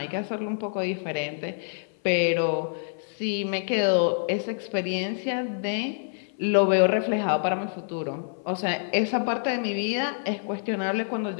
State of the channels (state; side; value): silent; right; 57 dB below the other